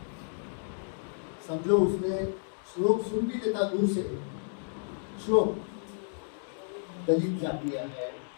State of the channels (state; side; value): silent; right; digital silence